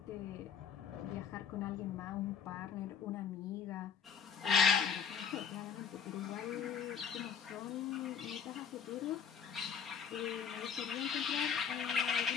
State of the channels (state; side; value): quieter; right; 7.1 dB